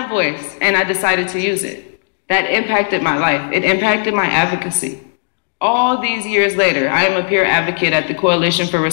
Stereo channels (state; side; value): silent; right; digital silence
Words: a voice, and I decided to use it. That impacted my life. It impacted my advocacy. All these years later, I am a peer advocate at the Coalition for